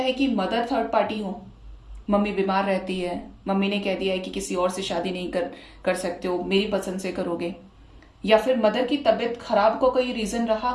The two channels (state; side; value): identical; both; correlation 1.00